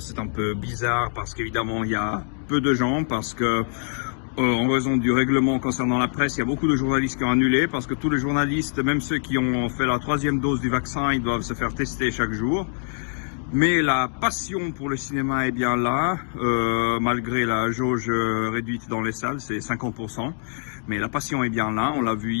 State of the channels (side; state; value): right; silent; digital silence